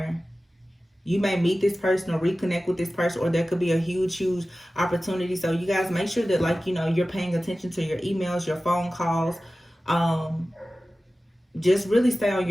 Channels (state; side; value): normal; both; correlation 0.96